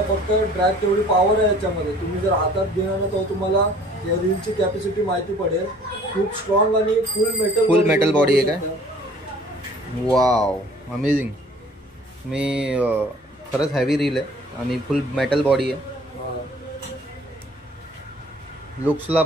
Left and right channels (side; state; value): both; normal; correlation 0.53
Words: फक्त ड्रॅग तेवढी पॉवर आहे याच्यामध्ये. तुम्ही जर हातात घेणार तर तुम्हाला या रीलची कॅपॅसिटी माहिती पडेल. खूप स्ट्रॉंग आणि फुल मेटल बॉडी आहे काय? Wow, amazing. मी खरंच हॅवी रील आहे आणि फुल मेटल बॉडी आहे. लुक्सला